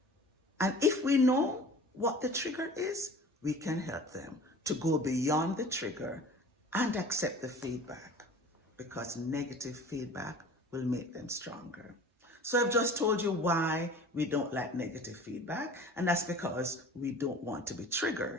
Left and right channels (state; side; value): normal; both; correlation 0.43